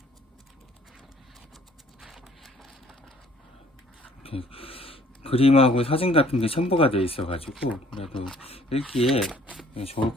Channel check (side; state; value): both; normal; correlation 0.57